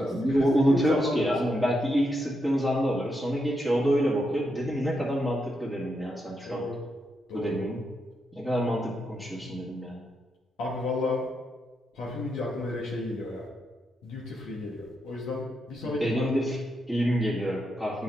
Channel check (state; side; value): normal; both; correlation 0.83